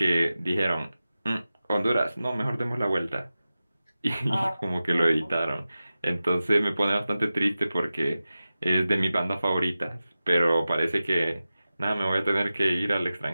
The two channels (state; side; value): inverted; both; correlation -0.94